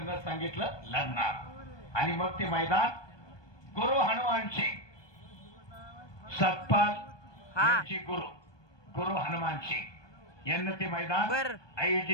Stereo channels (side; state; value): right; late; 1.2 ms